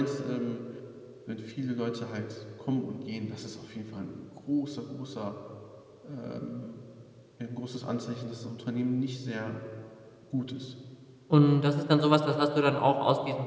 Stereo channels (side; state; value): both; identical; correlation 1.00